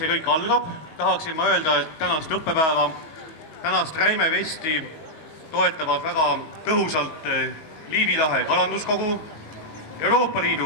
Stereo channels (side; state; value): right; late; 19 ms